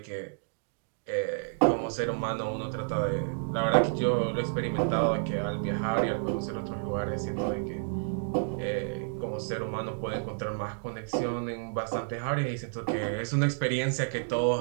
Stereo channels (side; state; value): left; silent; digital silence